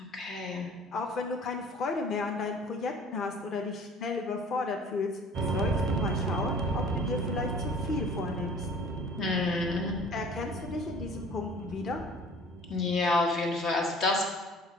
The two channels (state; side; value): normal; both; correlation 0.48